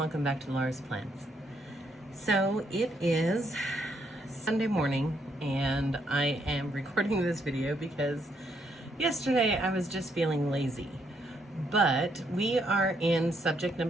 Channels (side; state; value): both; normal; correlation 0.74